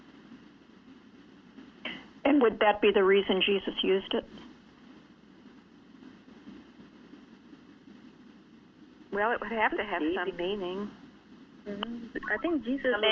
And would that be the reason Jesus used it? Well, it would have to have some meaning. Mm-hmm. I think Jesus. So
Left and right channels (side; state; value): both; identical; correlation 1.00